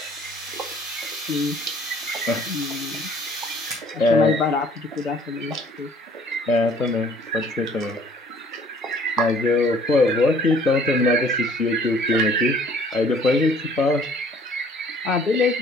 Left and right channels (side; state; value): both; normal; correlation 0.56